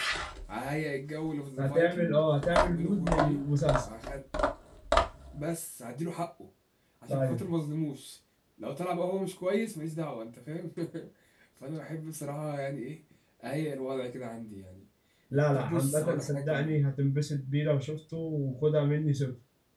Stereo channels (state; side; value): identical; both; correlation 1.00